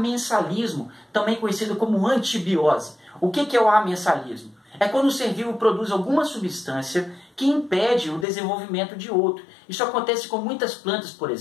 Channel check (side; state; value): right; drops out; at 8.2 s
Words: também conhecido como antibiose. O que é o amensalismo? É quando o ser vivo produz alguma substância que impede o desenvolvimento de outro. Isso acontece com muitas plantas, por